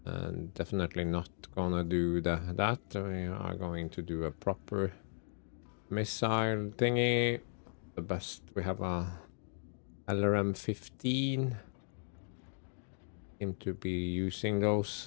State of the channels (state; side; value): silent; right; digital silence